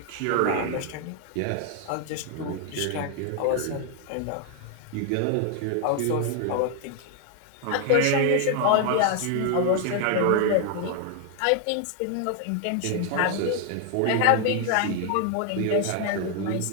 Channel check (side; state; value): both; different; correlation 0.00